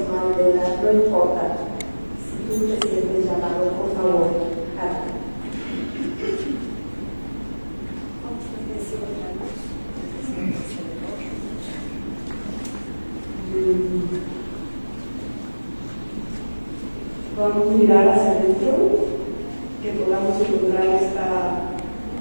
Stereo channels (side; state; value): both; inverted; correlation -1.00